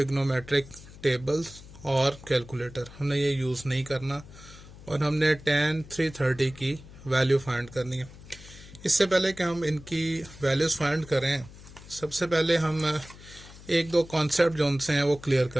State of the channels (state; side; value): noise; left; hum, 18 dB below the sound